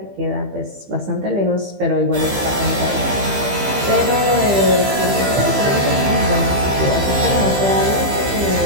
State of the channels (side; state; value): left; late; 15 ms